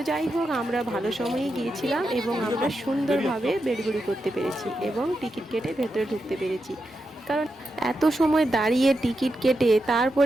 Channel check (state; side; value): normal; both; correlation 0.87